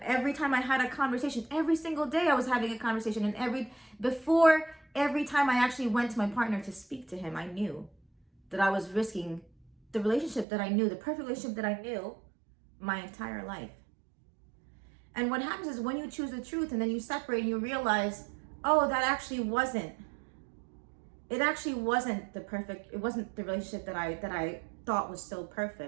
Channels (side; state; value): left; drops out; at 10.5 s